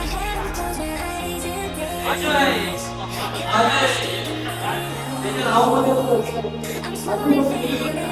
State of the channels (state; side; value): identical; both; correlation 1.00